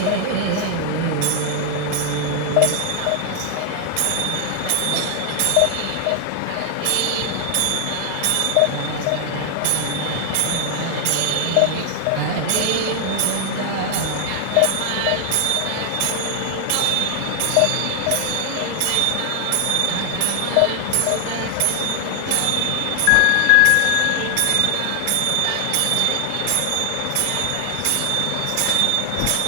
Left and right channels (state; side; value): different; both; correlation 0.00